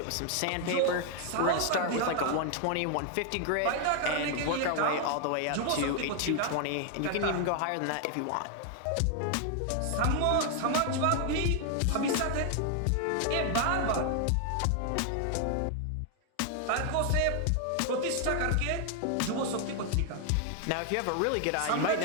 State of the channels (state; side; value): different; both; correlation 0.00